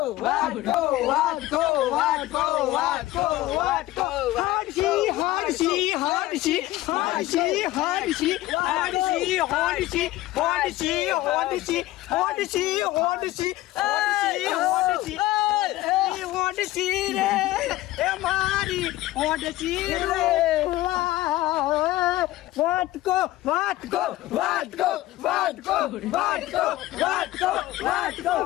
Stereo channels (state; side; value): quieter; right; 16.6 dB